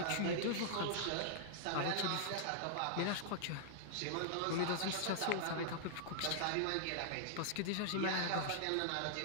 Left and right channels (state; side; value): different; both; correlation -0.01